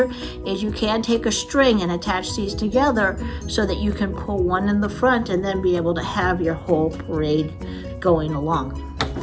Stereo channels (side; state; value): both; identical; correlation 1.00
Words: is you can take a string and attach these together so that you can pull one in the front and then be able to have your whole parade going along.